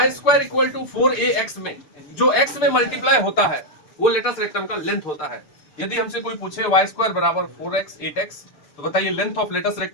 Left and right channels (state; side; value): late; right; 6.9 ms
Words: square equal to 4ax में जो x में मल्टीप्लाई होता है वो लेटस रेक्टम का लेंथ होता है। यदि हमसे कोई पूछे y स्क्वायर बराबर 4x 8x, तो बताइए लेंथ ऑफ लेटस